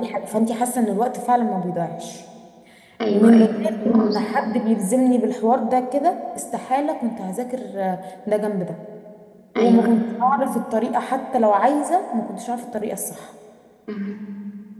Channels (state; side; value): identical; both; correlation 1.00